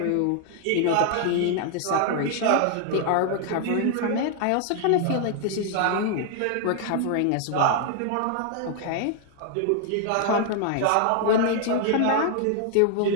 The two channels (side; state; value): both; different; correlation 0.00